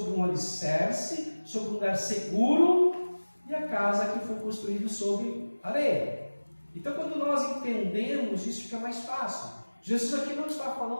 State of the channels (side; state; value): both; inverted; correlation -1.00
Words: um alicerce, sobre um lugar seguro, e a casa que foi construída sobre areia. Então, quando nós entendemos isso, fica mais fácil. Jesus aqui não está